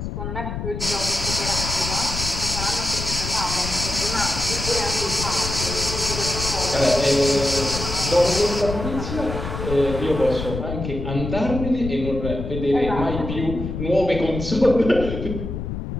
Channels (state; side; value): noise; left; rumble, 6 dB below the sound